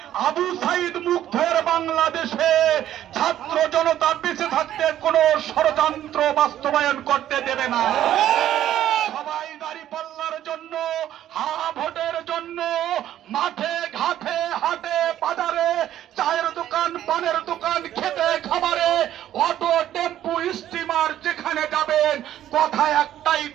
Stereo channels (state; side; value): quieter; left; 11.9 dB